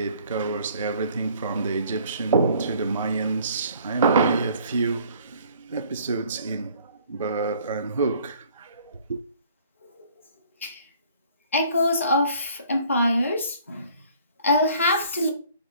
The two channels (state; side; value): inverted; both; correlation -0.56